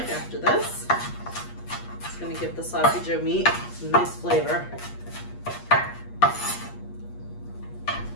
after this. It's gonna give the sloppy joe meat some nice flavor.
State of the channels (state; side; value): late; right; 8.4 ms